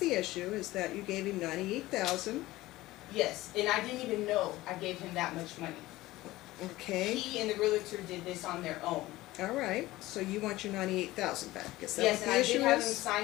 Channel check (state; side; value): quieter; right; 17.8 dB